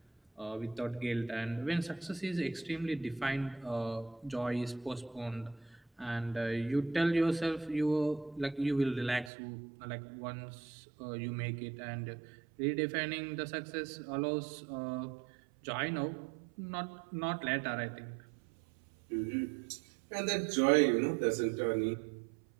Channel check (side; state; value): left; drops out; at 9.3 s